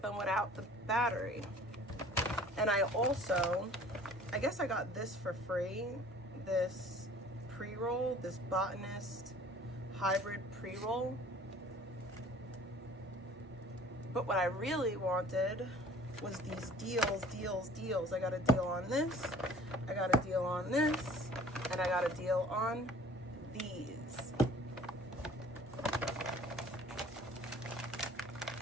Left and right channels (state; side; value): normal; both; correlation 0.49